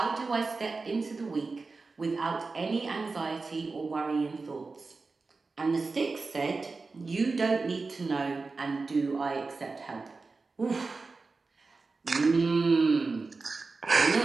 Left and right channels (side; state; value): left; quieter; 4.0 dB